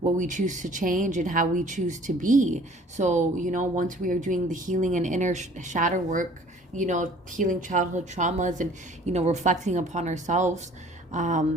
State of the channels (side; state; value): both; normal; correlation 0.52